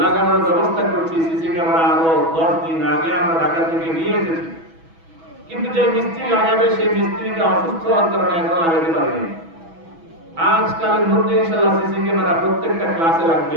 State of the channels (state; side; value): late; left; 6.1 ms